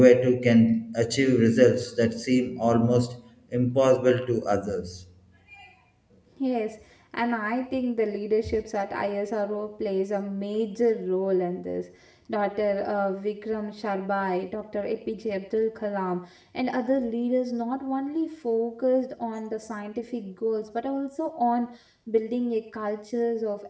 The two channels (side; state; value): both; identical; correlation 1.00